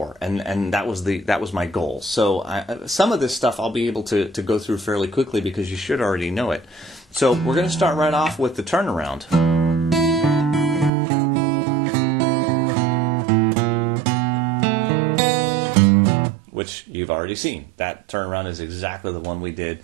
and that was my goal. So some of this stuff I'll be able to go through fairly quickly because you should already know it. So we're going to start right off with the turnaround. Which you've already seen. That turnaround is exactly the one we did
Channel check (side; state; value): left; drops out; at 10.9 s